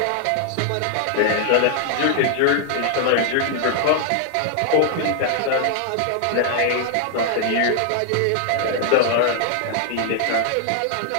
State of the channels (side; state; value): both; different; correlation 0.00